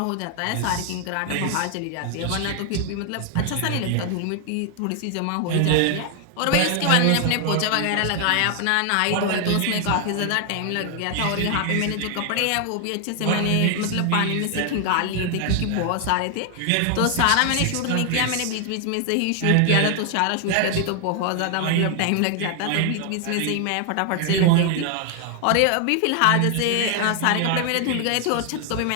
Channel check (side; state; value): both; different; correlation 0.00